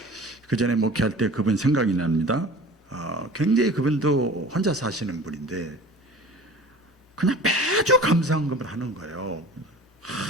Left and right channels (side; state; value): both; normal; correlation 0.41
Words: 전에 목회할 때 그분 생각이 납니다. 굉장히 그분도 혼자 사시는 분인데 그냥 매주 감사헌금을 하는 거예요.